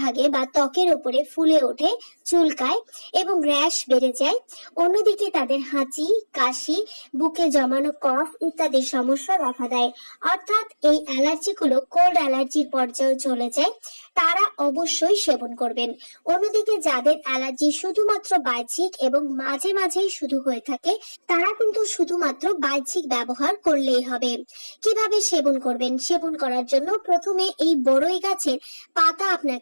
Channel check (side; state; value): both; inverted; correlation -1.00